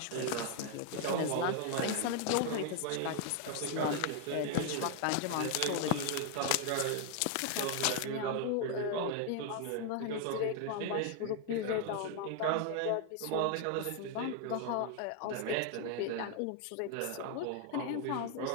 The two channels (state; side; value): different; both; correlation 0.00